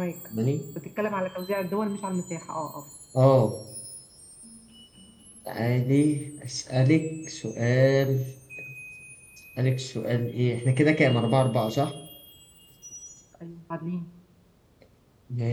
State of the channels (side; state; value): both; identical; correlation 1.00